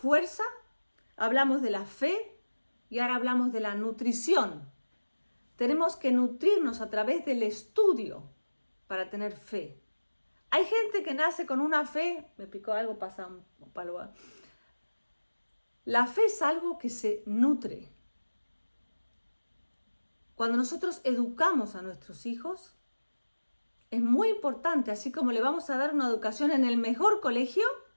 hablamos de la fe y ahora hablamos de la nutrición. Tenemos que nutrirnos a través del estudio para tener fe. Hay gente que nace con una fe, me picó algo, pasa un palo. La fe es algo que se nutre. Cuando nosotros educamos a nuestros hijos, es muy importante, así como le vamos a dar una educación en el mejor colegio,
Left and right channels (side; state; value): both; inverted; correlation -1.00